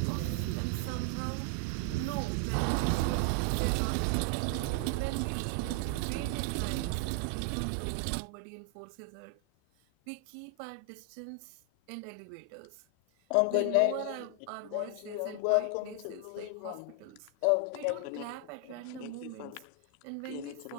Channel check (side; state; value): both; different; correlation 0.00